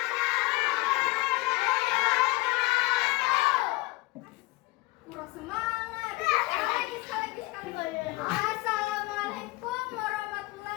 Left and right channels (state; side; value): quieter; right; 21.5 dB